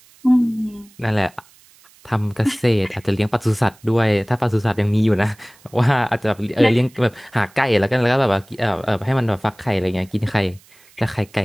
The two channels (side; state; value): right; noise; hiss, 28 dB below the sound